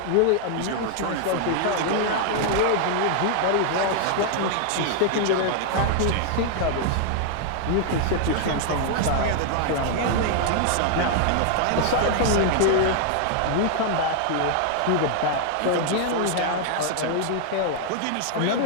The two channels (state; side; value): different; both; correlation 0.00